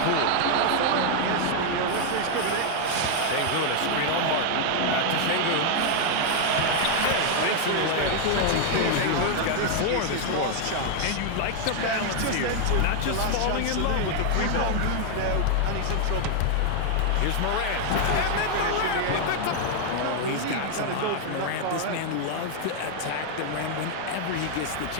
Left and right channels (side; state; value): both; different; correlation 0.00